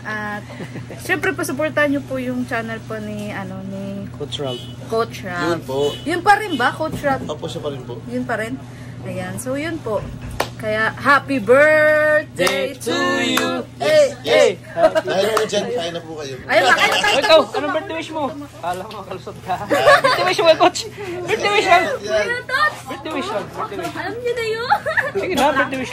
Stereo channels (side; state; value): both; identical; correlation 1.00